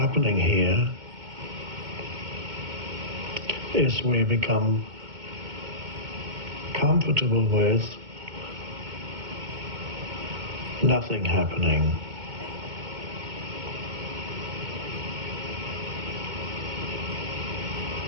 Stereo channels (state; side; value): late; left; 2.2 ms